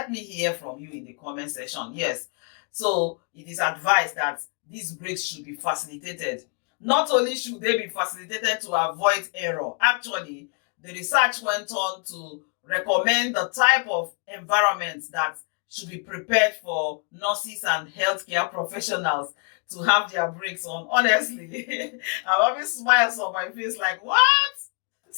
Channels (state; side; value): quieter; right; 35.5 dB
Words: me hear from you in the comment section. Yes, so it is advised that these breaks should be facilitated. Not only should they be facilitated to avoid error, actually the research went on to recommend the type of environment that should be prepared for nurses and healthcare professionals to have their breaks on. Honestly, I always smiles on my face like, what?